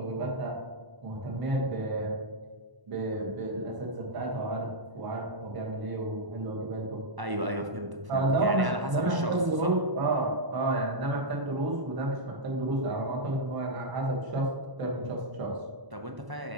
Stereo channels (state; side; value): late; left; 1.1 ms